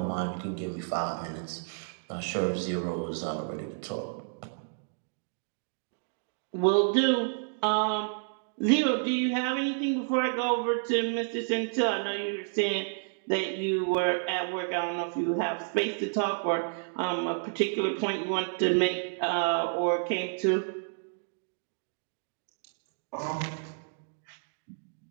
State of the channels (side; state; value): left; silent; digital silence